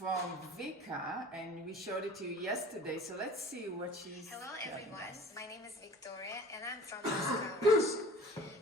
Vika, and we showed it to you yesterday. So let's see what she's. Hello everyone, my name is Victoria and I'm from Moscow, Russia.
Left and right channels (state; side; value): normal; both; correlation 0.44